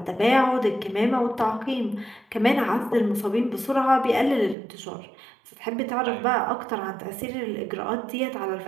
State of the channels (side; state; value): left; drops out; at 4.5 s